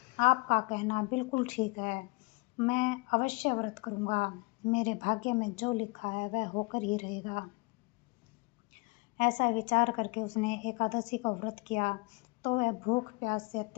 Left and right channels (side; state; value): right; quieter; 27.6 dB